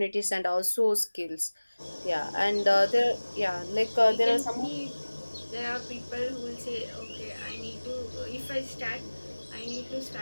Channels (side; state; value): both; inverted; correlation -1.00